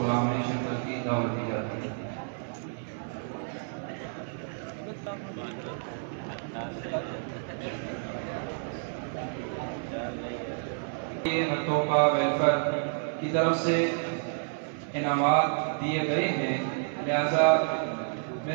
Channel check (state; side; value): silent; left; 57 dB below the other